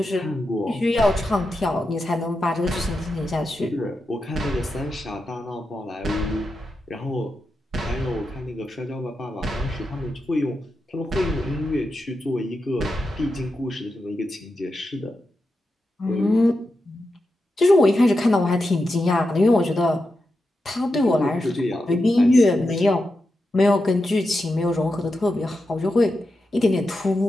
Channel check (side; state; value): both; normal; correlation 0.89